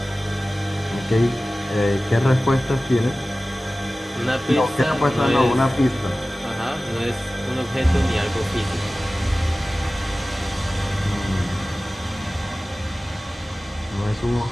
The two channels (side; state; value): both; normal; correlation 0.97